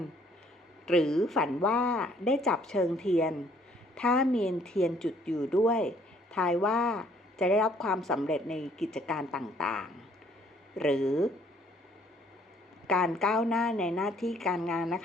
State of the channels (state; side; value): normal; both; correlation 0.63